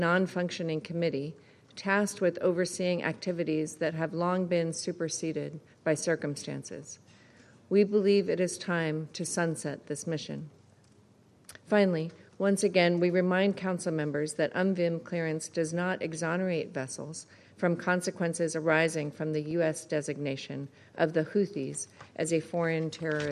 committee tasked with overseeing activities that have long been superseded by circumstances. We believe it is time to sunset this mission. Finally, once again, we remind Council members that UNVIM clearance does not exonerate vessels from consequences arising from the U.S. designation of the Houthis as a foreign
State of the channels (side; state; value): both; identical; correlation 1.00